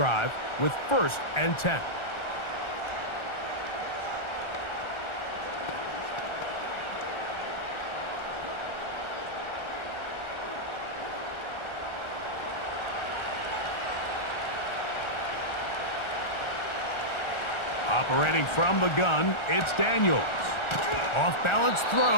with 1st and 10. Operating from the gun, it's Daniels. Off-balance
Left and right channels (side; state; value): right; late; 1.4 ms